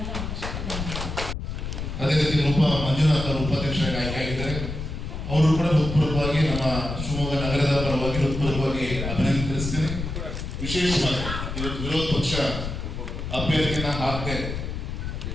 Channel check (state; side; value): noise; left; rumble, 5 dB below the sound